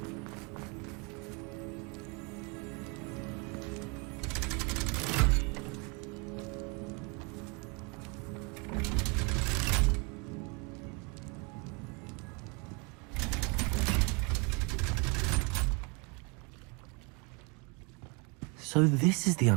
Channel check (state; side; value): quieter; left; 31.8 dB